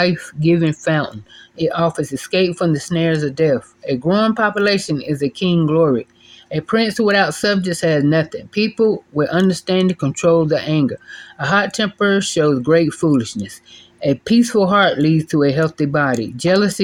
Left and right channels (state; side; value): identical; both; correlation 1.00